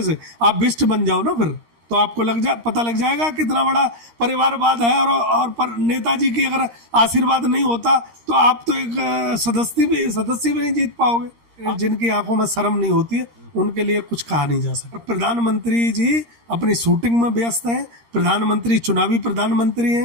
से, आप बिष्ट बन जाओ ना फिर, तो आपको पता लग जाएगा कितना बड़ा परिवारवाद है। और पर नेताजी की अगर आशीर्वाद नहीं होता तो आप तो एक सदस्य भी नहीं जीत पाओगे। जिनकी आंखों में शर्म नहीं होती है उनके लिए कुछ कहा नहीं जा सकता। प्रधानमंत्री जी अपनी शूटिंग में व्यस्त हैं, प्रधानमंत्री चुनावी प्रधानमंत्री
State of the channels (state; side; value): late; left; 13 ms